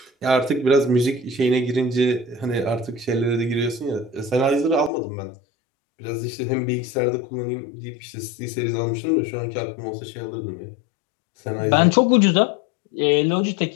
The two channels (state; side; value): drops out; right; at 4.9 s